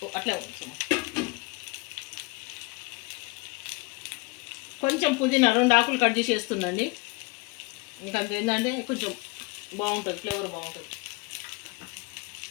అట్లా కొంచెం పుదీనా 2 ఆకులు కట్ చేసి వేస్తుందండి. మీకు అంత ఏంటంటే కొంచెం బాగుంటుంది, ఫ్లేవర్ బాగుంటుంది.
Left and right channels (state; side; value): quieter; right; 26.5 dB